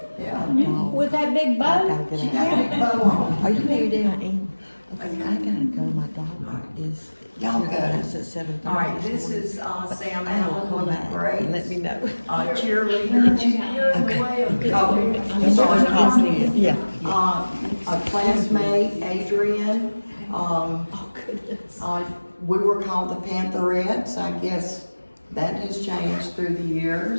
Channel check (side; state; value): both; inverted; correlation -1.00